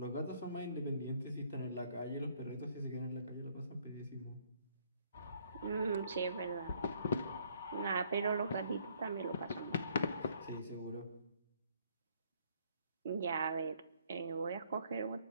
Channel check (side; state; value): both; inverted; correlation -0.65